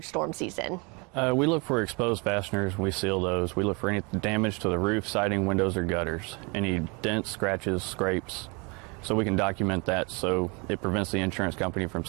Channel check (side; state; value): left; quieter; 30.1 dB